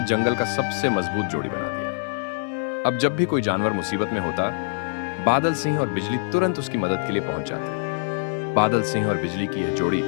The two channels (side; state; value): right; silent; digital silence